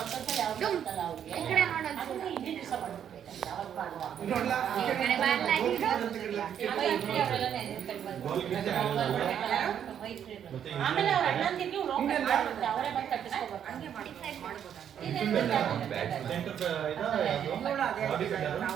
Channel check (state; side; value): quieter; left; 9.1 dB